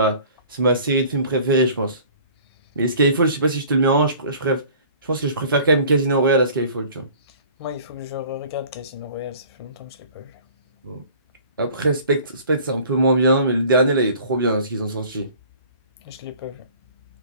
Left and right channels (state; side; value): inverted; both; correlation -0.48